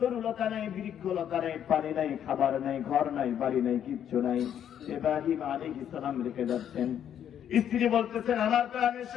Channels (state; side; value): quieter; right; 9.6 dB